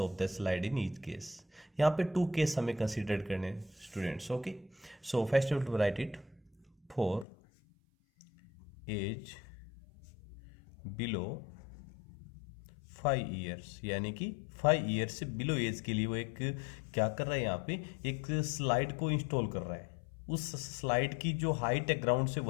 the slide in each case? यहाँ पे two case हमें consider करने students. Okay, so first you to write it. For age below 5 years, यानी कि 5 years से below as के लिए वो एक क्या कर रहा है, यहाँ पे एक स्लाइड को इंस्टॉल कर रहा है. उस स्लाइड की जो हाइट है ग्राउंड से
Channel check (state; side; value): drops out; right; at 7.2 s